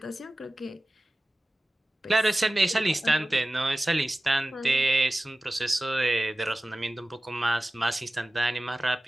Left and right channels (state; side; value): normal; both; correlation 0.96